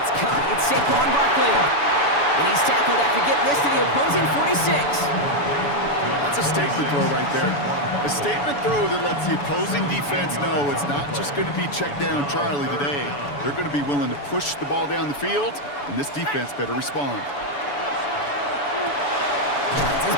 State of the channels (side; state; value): right; late; 7.0 ms